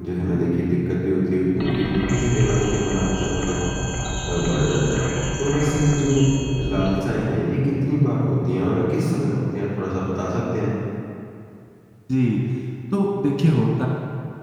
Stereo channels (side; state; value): both; identical; correlation 1.00